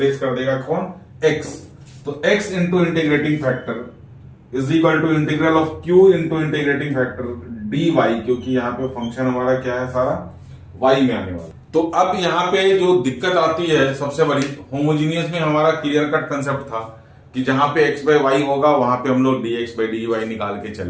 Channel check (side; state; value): both; identical; correlation 1.00